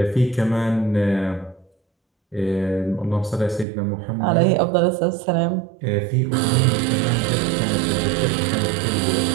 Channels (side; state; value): left; drops out; at 3.7 s